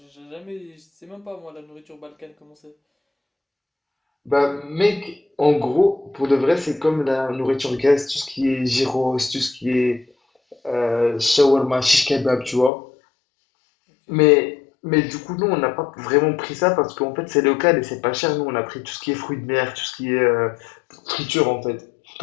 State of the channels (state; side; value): drops out; right; at 12.7 s